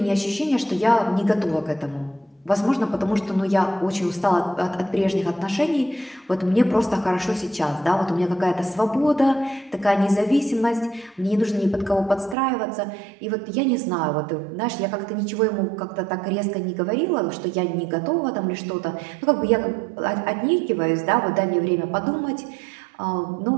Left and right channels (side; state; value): left; drops out; at 12.4 s